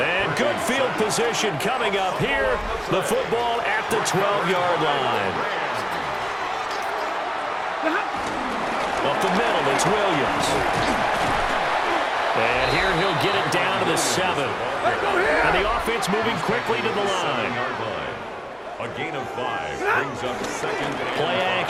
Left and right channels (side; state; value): both; identical; correlation 1.00